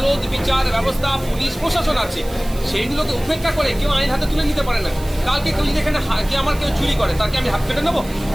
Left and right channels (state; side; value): noise; right; hiss, 18 dB below the sound